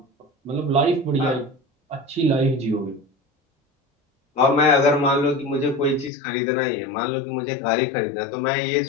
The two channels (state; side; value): drops out; right; at 6.1 s